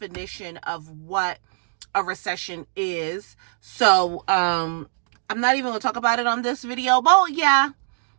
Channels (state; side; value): silent; left; digital silence